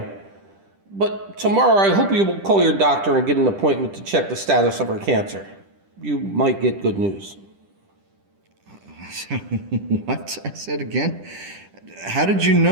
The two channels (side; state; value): left; late; 10 ms